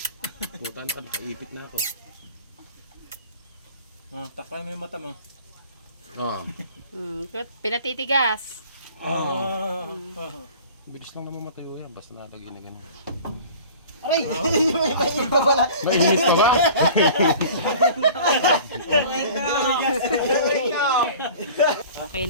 Puta na ka, nakaipit na ako. Takay mo yung mata mo. Pinatitigas. Bilis lang naman matayo yan, basta nalagay na ganun. Aray! May iba pala. Mainit pa ba? Okay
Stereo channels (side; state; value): both; inverted; correlation -0.43